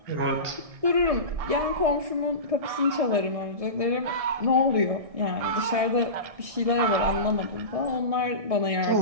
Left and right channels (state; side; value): late; left; 1.6 ms